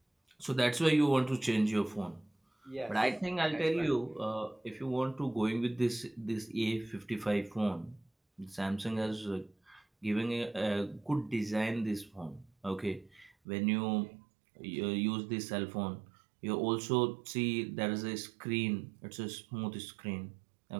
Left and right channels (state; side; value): drops out; left; at 13.3 s